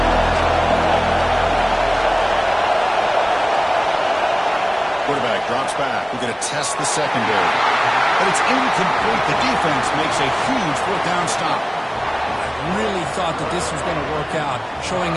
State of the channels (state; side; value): identical; both; correlation 1.00